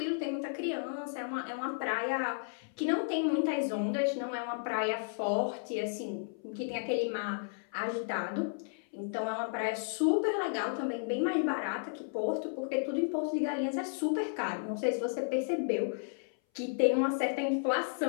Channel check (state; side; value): silent; right; 56 dB below the other